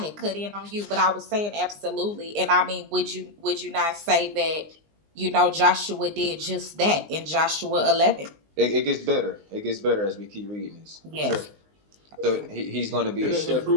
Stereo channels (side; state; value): left; late; 19 ms